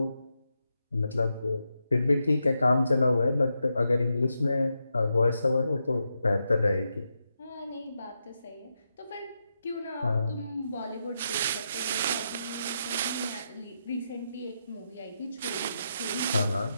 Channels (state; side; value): inverted; both; correlation -0.85